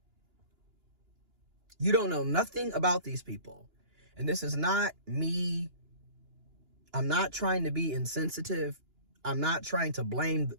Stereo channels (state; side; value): late; left; 2.9 ms